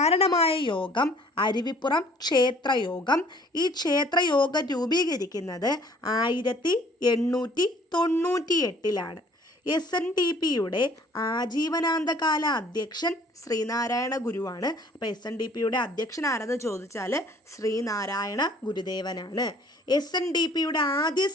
യോഗം അരുവിപ്പുറം ക്ഷേത്രയോഗം. ഈ ക്ഷേത്രയോഗം രൂപീകരിക്കുന്നത് 1898-ലാണ്. SNDPയുടെ ആജീവനാന്തകാല അധ്യക്ഷൻ ശ്രീനാരായണ ഗുരുവാണ്. അപ്പോൾ SNDPയുടെ അധ്യക്ഷൻ ആരെന്ന് ചോദിച്ചാൽ ശ്രീനാരായണ ഗുരുദേവനാണ്. SNDPയുടെ ആദ്യ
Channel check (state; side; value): normal; both; correlation 0.55